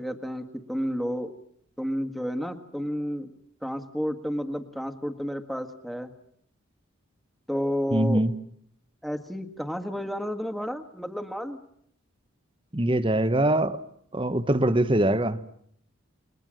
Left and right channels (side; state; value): both; normal; correlation 0.77